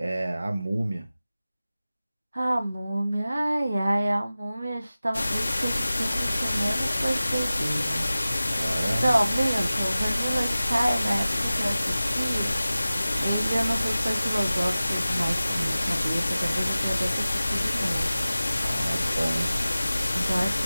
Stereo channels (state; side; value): inverted; both; correlation -0.96